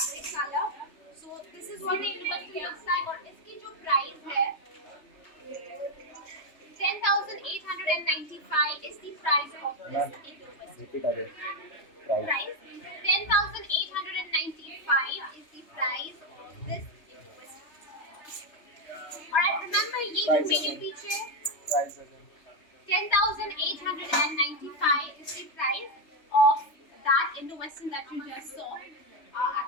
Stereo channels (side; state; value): right; late; 3.3 ms